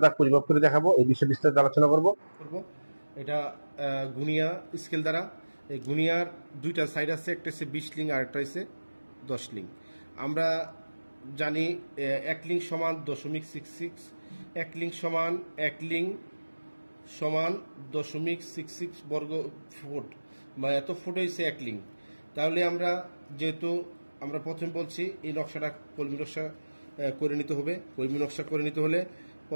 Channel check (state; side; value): inverted; both; correlation -1.00